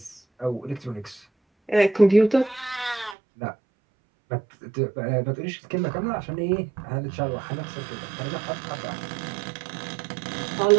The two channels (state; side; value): drops out; left; at 3.2 s